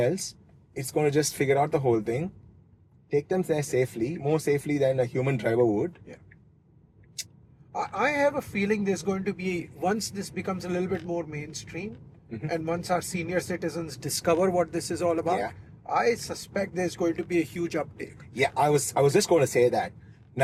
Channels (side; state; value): both; identical; correlation 1.00